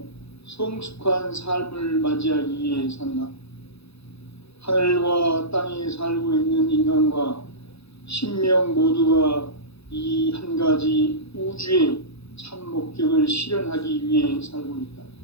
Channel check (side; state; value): right; late; 0.79 ms